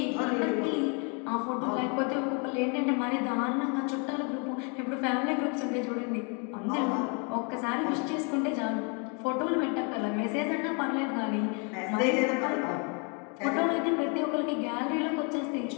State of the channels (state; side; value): quieter; right; 35.8 dB